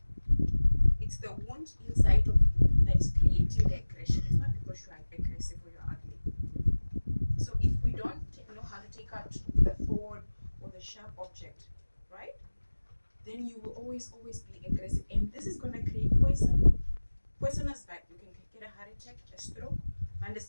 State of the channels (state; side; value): inverted; both; correlation -1.00